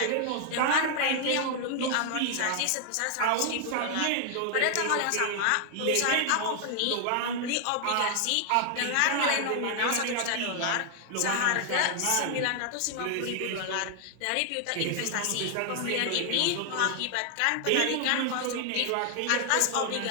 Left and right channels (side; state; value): both; different; correlation 0.00